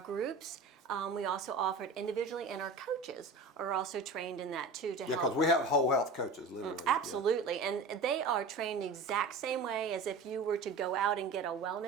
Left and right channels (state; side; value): quieter; left; 3.7 dB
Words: We also offer it individually, and our coaches are also trained in that too to help. Yeah, because we have whole health coaches, literally. Absolutely, and they are trained the exact same way as if you were to go out and get a